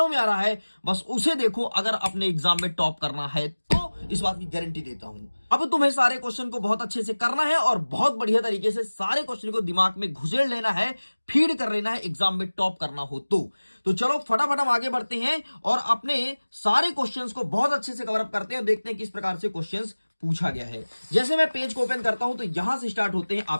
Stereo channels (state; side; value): inverted; both; correlation -1.00